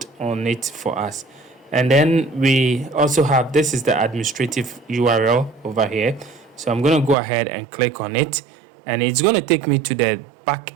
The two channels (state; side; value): drops out; left; at 7.2 s